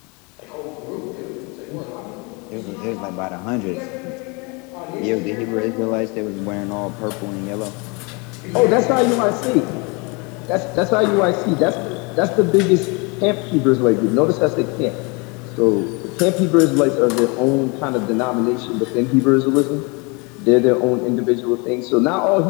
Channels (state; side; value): quieter; right; 30.0 dB